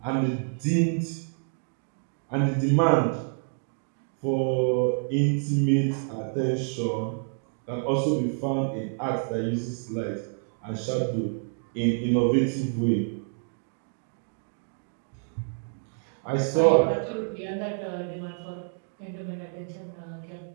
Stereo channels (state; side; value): silent; left; 59 dB below the other